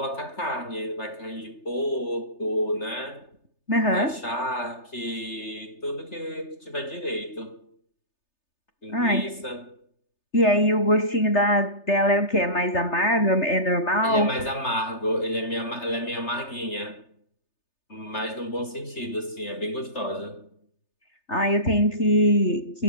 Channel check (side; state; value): right; late; 3.3 ms